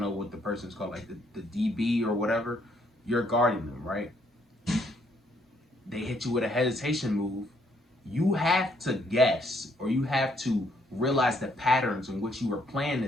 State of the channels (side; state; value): both; normal; correlation 0.70